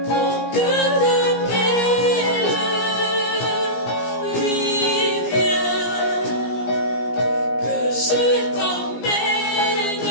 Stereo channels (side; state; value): right; late; 17 ms